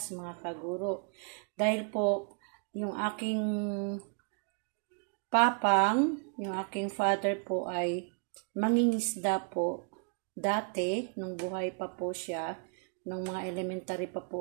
mga kaguro. Dahil po yung aking papang, yung aking father po ay mangingisda po. Dati, nung buhay pa po siya, nung mga elementary pa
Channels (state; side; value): quieter; left; 39.9 dB